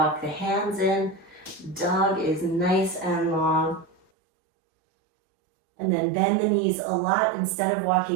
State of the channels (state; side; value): drops out; left; at 4.0 s